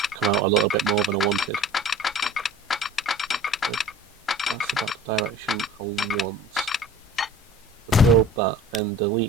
come out a little bit more than I wanted. But that's about the direction I want. To build that, then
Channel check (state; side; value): normal; both; correlation 0.43